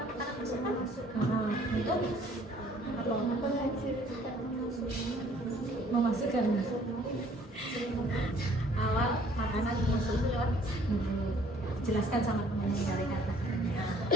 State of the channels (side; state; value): both; normal; correlation 0.58